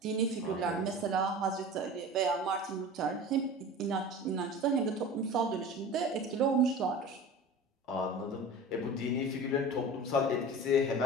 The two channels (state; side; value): normal; both; correlation 0.36